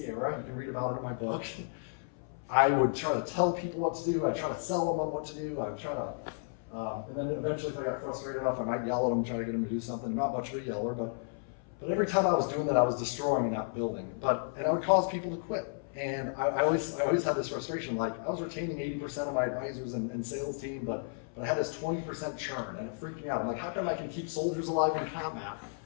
era. You can read about it in my book. I would try to tell people what to do. I'd try to sell them on what to do. I'd try to, and then eventually if I got frustrated enough, I might yell at them, try to get them to do something. I'm not much of a yeller, but every time I was doing that, I was destroying and not building. And I would cause people to quit. And I always had this frustration, like I was retaining 80% of my advisors and sales team, but I had this 20% churn, and it freaked me out. I'm like, how come I can keep soldiers alive in combat,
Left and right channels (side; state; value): right; silent; 56 dB below the other